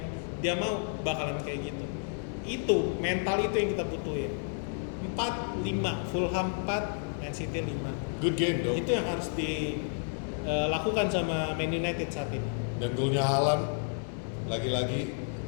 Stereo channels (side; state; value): right; silent; 57 dB below the other